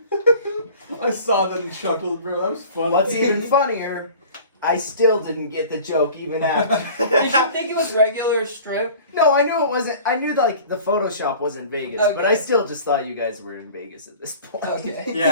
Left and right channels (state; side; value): inverted; both; correlation -0.44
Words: I saw that and chuckled, bro. That was fun. What's even funnier, I still didn't get the joke even after. Did you think it was regular strip? No, I knew it wasn't. I knew like the Photoshop was in Vegas, but Okay. I still just thought you guys were in Vegas at this point. Okay.